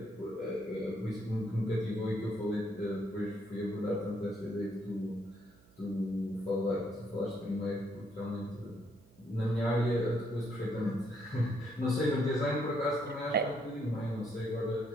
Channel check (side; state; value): right; noise; hum, 27 dB below the sound